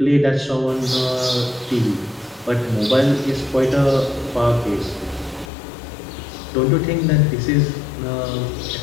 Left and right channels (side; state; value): right; drops out; at 5.5 s